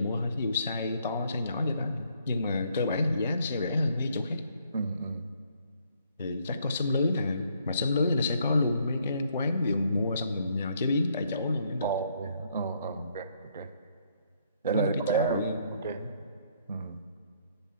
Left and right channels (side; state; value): both; inverted; correlation -0.69